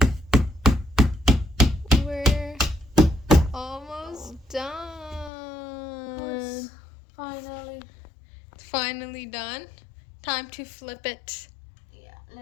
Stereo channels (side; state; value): right; drops out; at 5.3 s